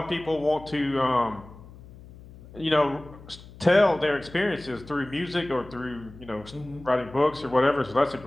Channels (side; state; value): left; noise; hum, 19 dB below the sound